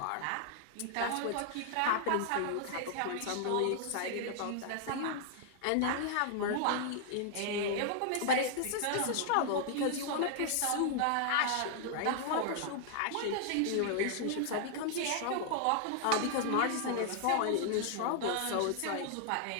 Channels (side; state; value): both; different; correlation 0.00